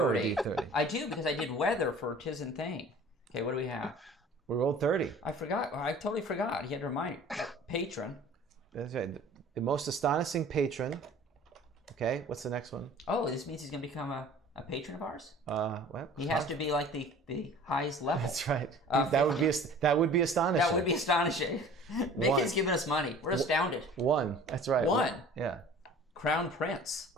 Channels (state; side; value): normal; both; correlation 0.46